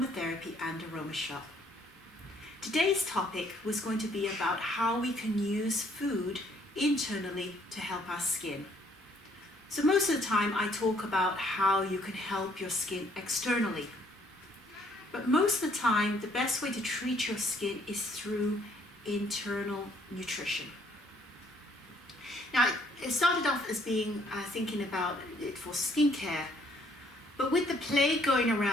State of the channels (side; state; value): both; normal; correlation 0.65